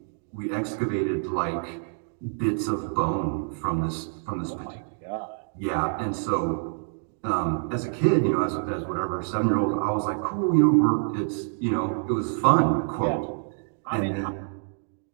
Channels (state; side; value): silent; left; digital silence